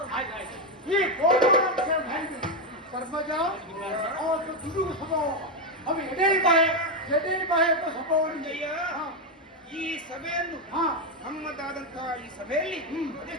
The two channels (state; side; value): normal; both; correlation 0.06